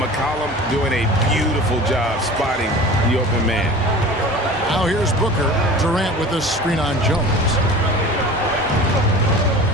McCollum doing a beautiful job spotting the open man. Now here's Booker. Durant with the screen on Jones.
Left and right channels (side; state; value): both; normal; correlation 0.39